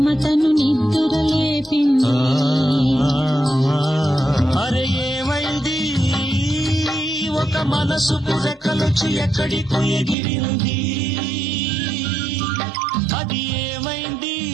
నిద్రలేపింది. అరే ఏమైంది, ఒక మనసు పురకలొచ్చి ఎక్కడికో ఎగిరింది. అది ఏమైంది,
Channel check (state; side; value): drops out; left; at 10.2 s